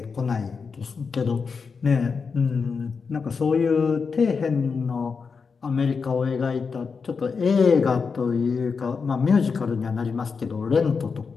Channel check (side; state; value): right; quieter; 5.3 dB